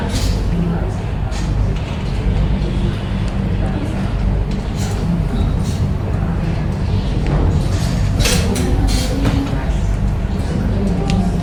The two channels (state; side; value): identical; both; correlation 1.00